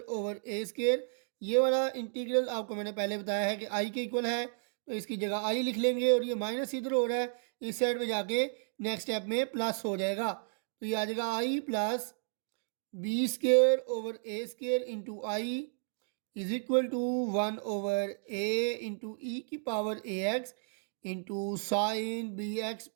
ये वाला इंटीग्रल आपको मैंने पहले बताया है कि आई के इक्वल है, तो इसकी जगह आई लिख लेंगे, और ये माइनस इधर हो रहा है, इस साइड में जाके नेक्स्ट स्टेप में प्लस हो जाएगा, तो ये आ जाएगा i plus b²/a² into I is equal to 1/a into ई की पावर ए x into sine B x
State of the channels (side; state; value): left; silent; digital silence